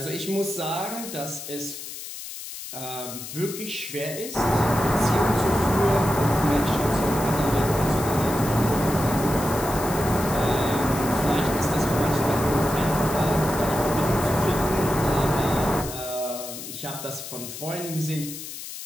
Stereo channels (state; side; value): noise; left; hiss, 10 dB below the sound